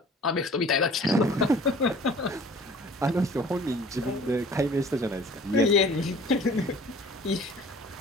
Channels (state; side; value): normal; both; correlation 0.48